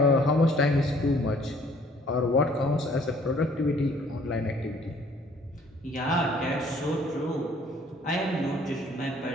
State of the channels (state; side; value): normal; both; correlation 0.58